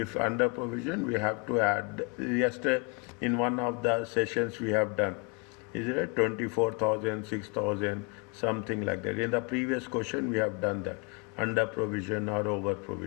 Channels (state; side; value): quieter; right; 31.0 dB